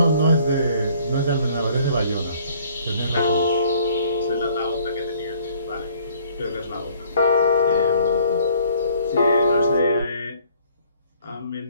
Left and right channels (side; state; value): both; inverted; correlation -0.59